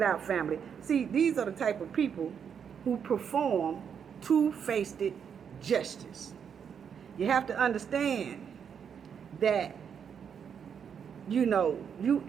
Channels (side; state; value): left; quieter; 7.4 dB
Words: out, family. See, these are the type of people who perform two-faced justice. You have to understand that, you know, you